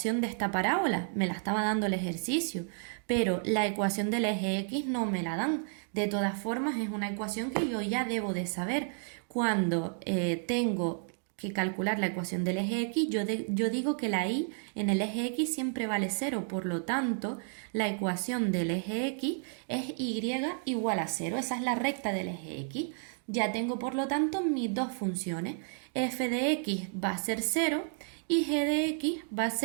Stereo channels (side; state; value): left; silent; 57 dB below the other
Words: de esta parábola, me la estaba dando el ejercicio, pero la ecuación del eje X no me la dan. De todas formas, es una ecuación que yo ya debo de saber. Cuando tengo que calcular la ecuación del eje X, yo digo que la y en el eje X siempre vale 0, por lo tanto, la ecuación del eje X es y igual a 0, esa es la recta del eje X. Ya tengo, por lo tanto, mis dos funciones. F de x va a ser 0 y g de x va a